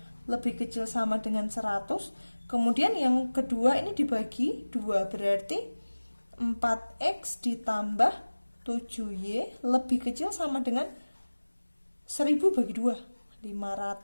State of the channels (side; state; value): both; inverted; correlation -1.00